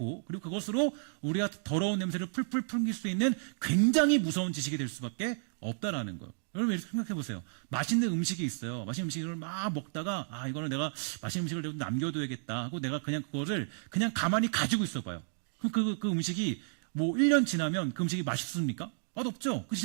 그리고 그것으로 우리가 더러운 냄새를 풀풀 풍길 수 있는 굉장히 무서운 지식이 될 수밖에 없다라는 거예요. 여러분 이렇게 생각해 보세요. 맛있는 음식이 있어요. 맛있는 음식을 막 먹다가 이거는 내가 맛있는 음식을 좀 남겨둬야겠다 하고 내가 그냥 그거를 그냥 가만히 가지고 있어 봐요. 그럼 그 음식이 뭐 1년 지나면 그 음식이 맛있습니까? 맛없죠. 그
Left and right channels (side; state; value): left; silent; digital silence